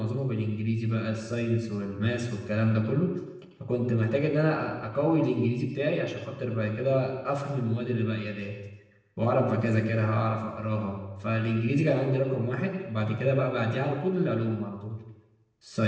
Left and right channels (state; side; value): identical; both; correlation 1.00